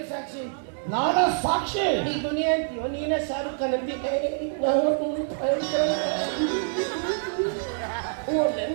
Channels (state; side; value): silent; left; digital silence